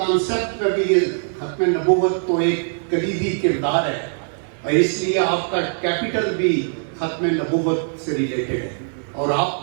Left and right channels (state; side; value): silent; left; 59 dB below the other